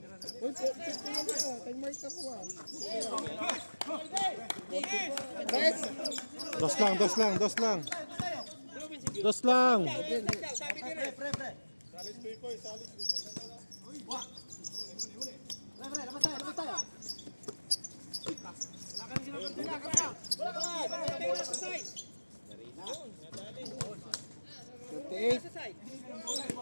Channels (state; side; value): inverted; both; correlation -1.00